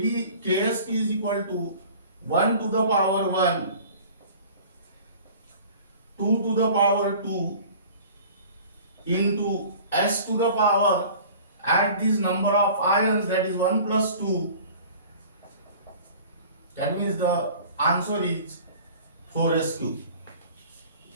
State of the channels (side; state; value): both; inverted; correlation -0.45